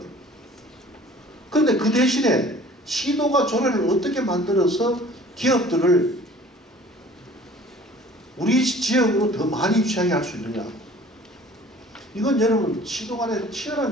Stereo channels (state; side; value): normal; both; correlation 0.49